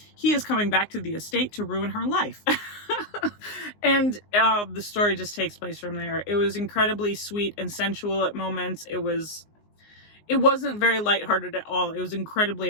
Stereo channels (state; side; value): late; right; 19 ms